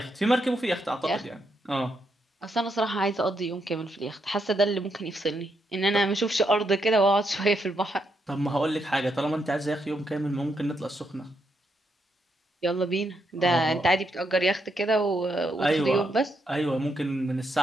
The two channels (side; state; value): both; normal; correlation 0.79